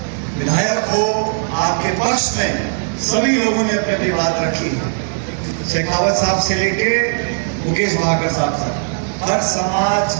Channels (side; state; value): left; silent; digital silence